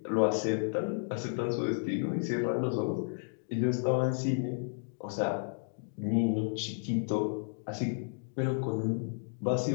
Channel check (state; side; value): silent; right; digital silence